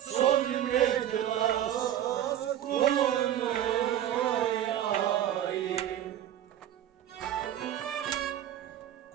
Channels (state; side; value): quieter; left; 11.3 dB